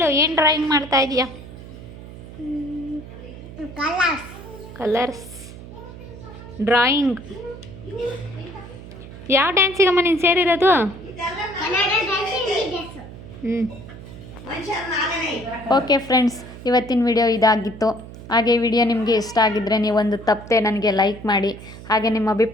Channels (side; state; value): right; noise; hum, 15 dB below the sound